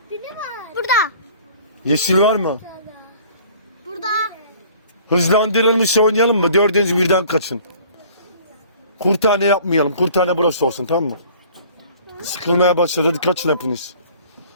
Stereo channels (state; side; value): inverted; both; correlation -0.51